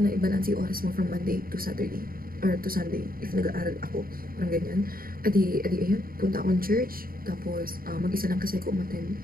na i-balance yung oras mo from Monday to Saturday. Or to Sunday, if nag-aaral ako. Parang ganyan. Adi, ayun, punta akong church. Tapos, mag-isa lang kasi ako umattend.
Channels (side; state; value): left; late; 0.42 ms